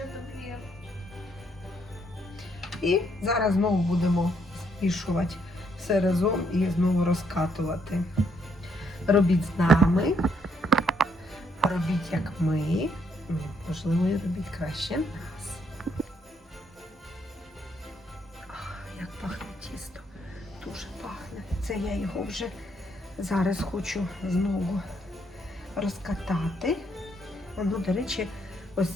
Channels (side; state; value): both; normal; correlation 0.72